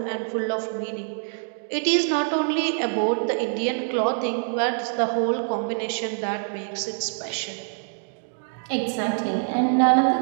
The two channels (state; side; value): silent; left; 59 dB below the other